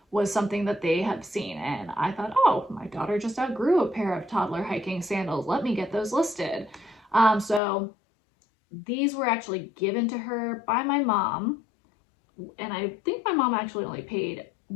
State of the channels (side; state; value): right; drops out; at 7.6 s